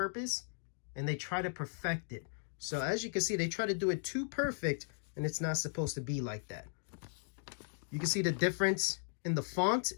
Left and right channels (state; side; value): silent; right; digital silence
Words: and they try to perfect it. So as you can see, they try to do it too perfect, and it's not supposed to be like that. You can see the difference in the font